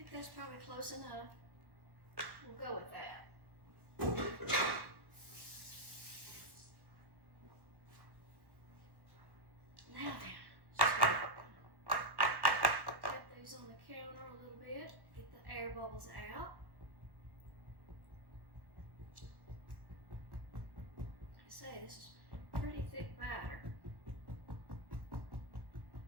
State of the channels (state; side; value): late; left; 1.2 ms